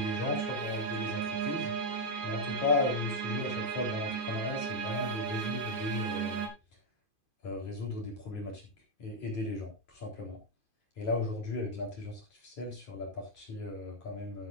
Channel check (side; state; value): right; late; 2.5 ms